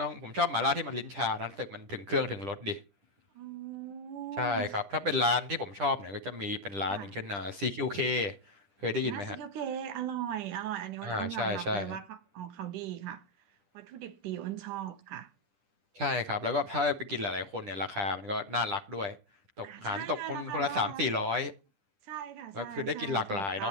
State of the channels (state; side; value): late; left; 10 ms